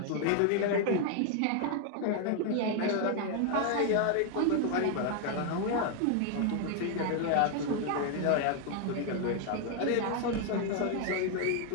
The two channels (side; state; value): both; different; correlation 0.00